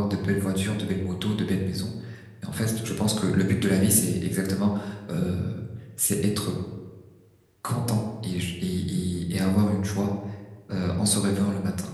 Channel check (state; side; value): identical; both; correlation 1.00